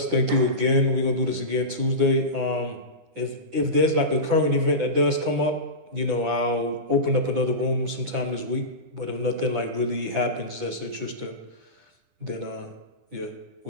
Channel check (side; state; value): left; late; 10 ms